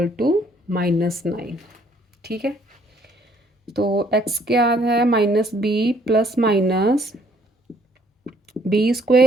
to -9। ठीक है, तो x क्या है, -b plus minus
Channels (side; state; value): both; normal; correlation 0.64